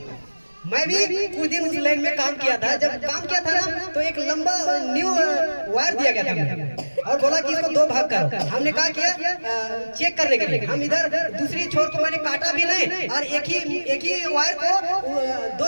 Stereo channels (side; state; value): both; inverted; correlation -1.00